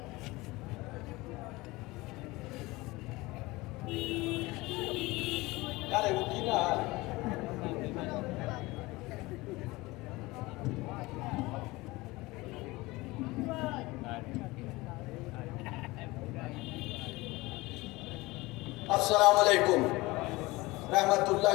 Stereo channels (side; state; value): right; quieter; 21.3 dB